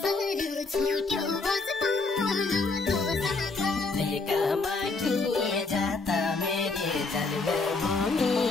लेकामा के जाता मेरे जन्मभूमि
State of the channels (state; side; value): quieter; right; 3.8 dB